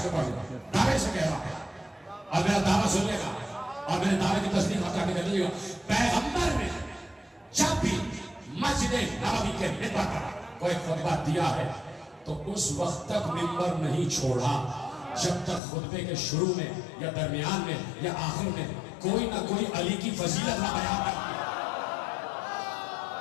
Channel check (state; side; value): drops out; right; at 15.6 s